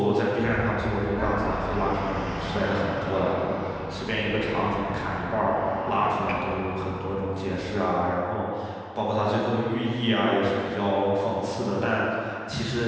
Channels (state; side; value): identical; both; correlation 1.00